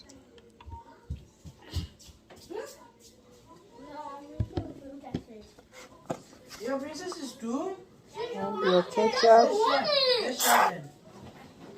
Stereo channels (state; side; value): identical; both; correlation 1.00